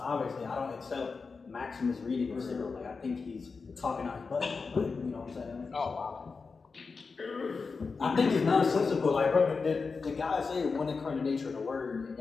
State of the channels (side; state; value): right; quieter; 4.7 dB